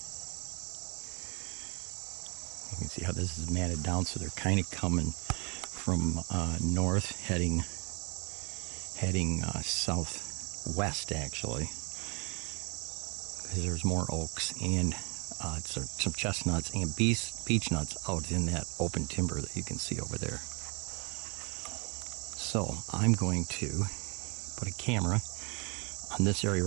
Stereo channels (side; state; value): left; quieter; 32.5 dB